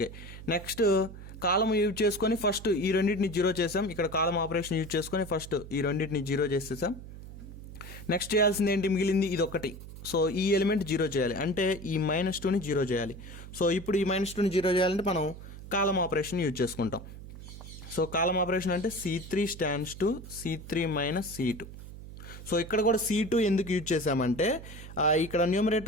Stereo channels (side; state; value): right; noise; hum, 13 dB below the sound